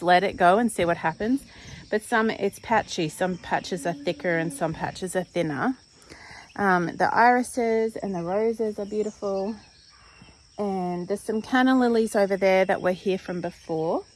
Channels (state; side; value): identical; both; correlation 1.00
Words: let it go and see what happens. But it's patchy. Some patches are thicker and some patches are thinner. The irises and the roses are beautiful. And there's some canna lilies over there that were here from before.